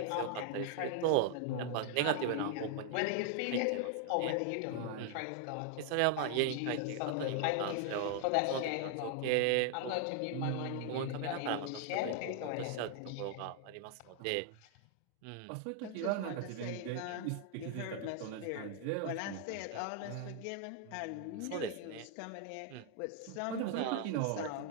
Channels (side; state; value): both; different; correlation 0.00